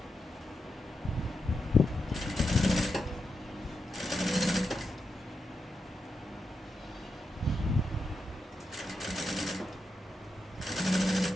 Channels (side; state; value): both; normal; correlation 0.86